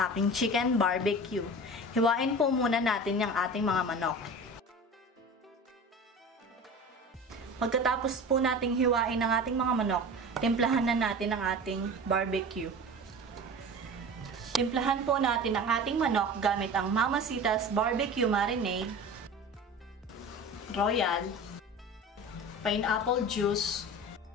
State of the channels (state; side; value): normal; both; correlation 0.35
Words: aking chicken barbecue. Hiwain po muna natin yung ating mga manok. Pagkatapos po nating hiwain ang ating mga manok, timplahan na natin ang ating barbecue. Timplahan po natin ang ating manok gamit ang Mamacita's Barbecue Marinade, Royal, pineapple juice,